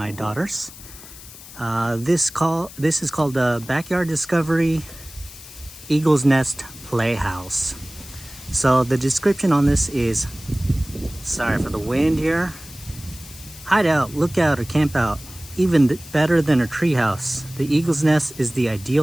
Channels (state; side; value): noise; left; hiss, 17 dB below the sound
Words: daughters. This is called the Backyard Discovery Eagle's Nest Playhouse. So the description on this is, sorry for the wind here, hide out, look out, or camp out. Even better than a treehouse, the Eagle's Nest is the